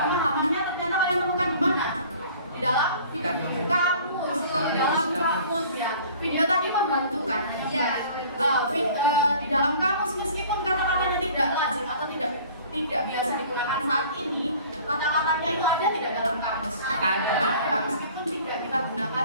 Pemahamannya ternyata kalian temukan di mana? Di dalam kamus. Di dalam kamus ya. Video tadi membantu kan? Iya. Di dalam kamus meskipun kata-katanya tidak lazim atau tidak biasa digunakan saat ini, kata-katanya itu ada tidak dalam kamus? Ada. Meskipun tidak kita gunakan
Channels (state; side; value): inverted; both; correlation -0.48